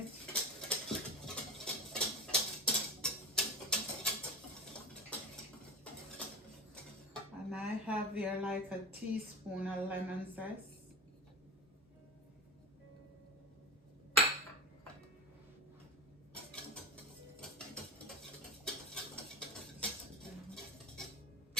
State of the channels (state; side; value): normal; both; correlation 0.26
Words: And I have here like a teaspoon of lemon zest.